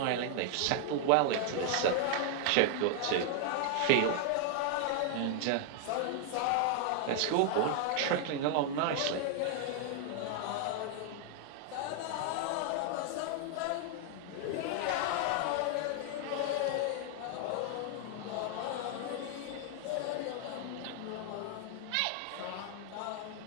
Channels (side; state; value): both; different; correlation 0.00